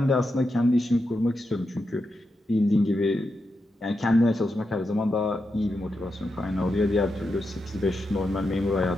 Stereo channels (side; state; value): both; normal; correlation 0.87